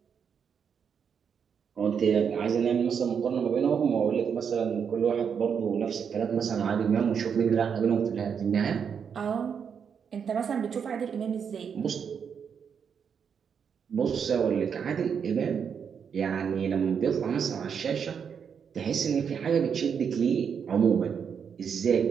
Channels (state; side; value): quieter; left; 7.0 dB